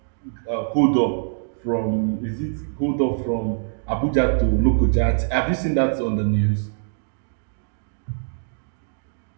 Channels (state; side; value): silent; left; digital silence